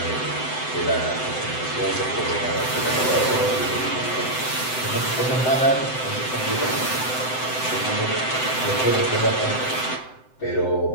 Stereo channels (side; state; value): right; late; 7.8 ms